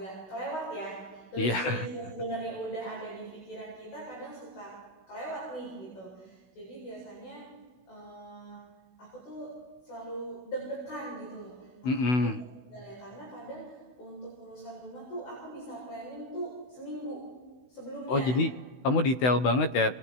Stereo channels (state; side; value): late; right; 16 ms